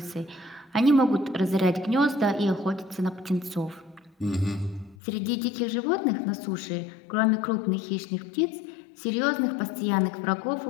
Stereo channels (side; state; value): right; drops out; at 5.0 s